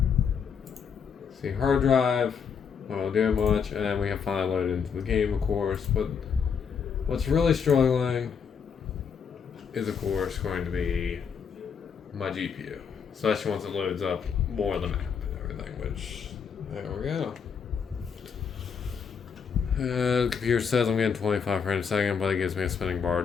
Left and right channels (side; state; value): right; quieter; 6.6 dB